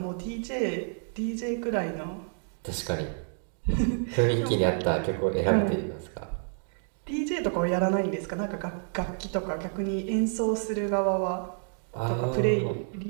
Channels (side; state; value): left; silent; 59 dB below the other